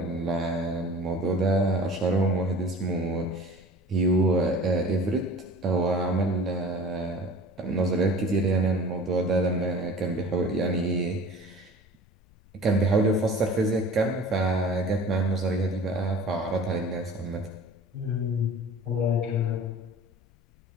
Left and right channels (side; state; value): left; noise; rumble, 29 dB below the sound